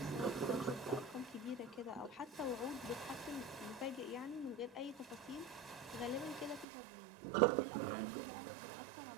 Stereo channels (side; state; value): left; drops out; at 6.7 s